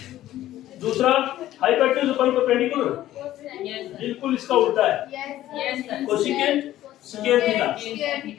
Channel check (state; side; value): quieter; right; 13.8 dB